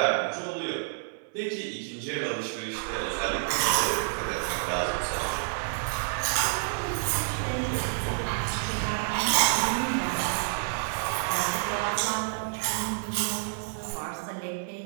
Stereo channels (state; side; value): silent; left; digital silence